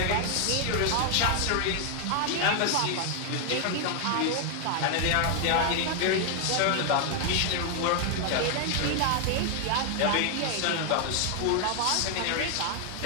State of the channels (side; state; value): both; different; correlation 0.00